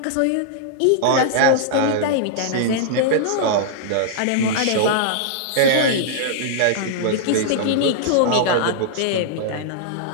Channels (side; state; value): both; different; correlation -0.01